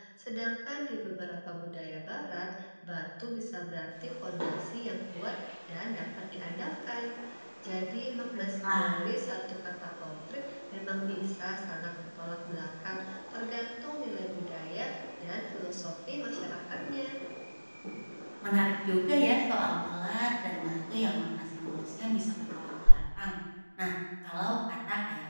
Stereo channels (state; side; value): inverted; both; correlation -1.00